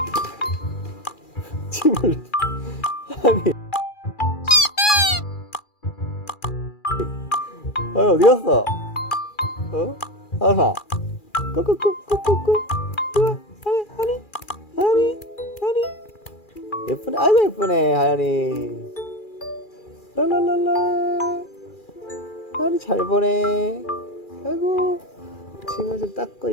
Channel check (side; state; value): right; late; 2.4 ms